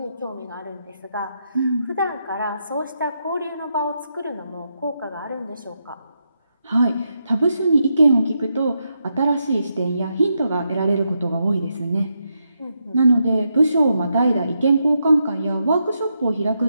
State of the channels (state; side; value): inverted; both; correlation -0.83